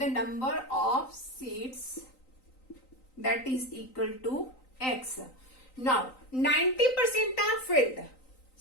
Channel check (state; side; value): late; right; 3.9 ms